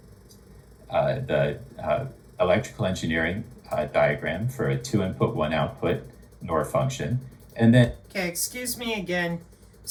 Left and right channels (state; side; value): identical; both; correlation 1.00